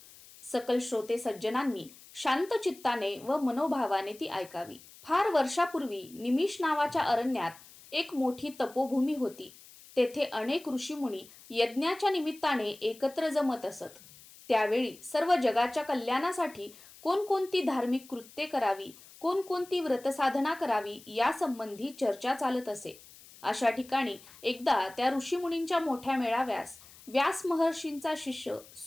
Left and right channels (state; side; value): noise; left; hiss, 21 dB below the sound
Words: सकल श्रोते सज्जनांनी शांत चित्ताने व मनोभावाने ती ऐकावी. फार वर्षापूर्वी निमिष नावाच्या अरण्यात एक मोठी तपोभूमी होती. तेथे अनेक ऋषीमुनी यज्ञाच्या निमित्ताने एकत्र जमत असत. त्यावेळी सर्व जगाच्या कल्याणासाठी कोणकोणती धार्मिक कृत्ये करावी, कोणकोणती व्रतसाधना करावी यासंबंधी चर्चा चालत असे. अशा ठिकाणी एकदा त्या ऋषीमुनींच्या मोठ्या मेळाव्यास व्यास महर्षींचा शिष्य